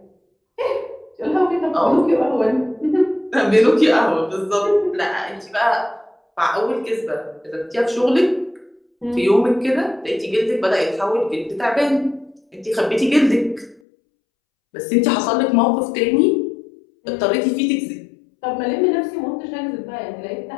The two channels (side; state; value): right; drops out; at 13.8 s